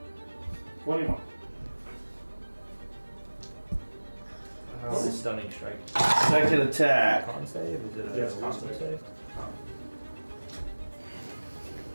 21. What's a stunning strike? Second attack. Con save? Is it a Yes, con wisdom save. save?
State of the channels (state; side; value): inverted; both; correlation -1.00